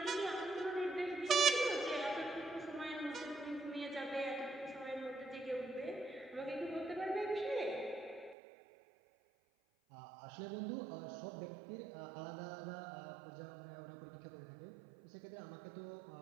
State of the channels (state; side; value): drops out; left; at 8.3 s